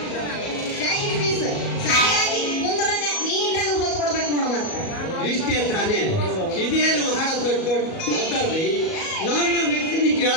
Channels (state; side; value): late; right; 37 ms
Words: ಜಾಕೆಟ್ ಪೀಸ್ ಸರಿಯಾಗಿ ಕುಂದ್ರಂಗ ನೀಟಾಗಿ ಹೊತ್ತು ಕೊಡ್ಬೇಕು ನೋಡ. ಮತ್ತೆ ಇಷ್ಟೇ ತಾನೇ. ಇದೇನು ಬಹಳ ದೊಡ್ಡ ದೊಡ್ಡದ್ರಿ. ನಮ್ಮ ಮೆಚ್ಚಿನ